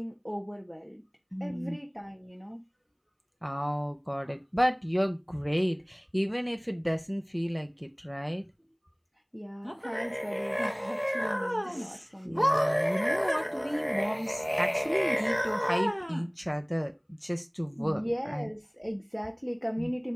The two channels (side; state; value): both; identical; correlation 1.00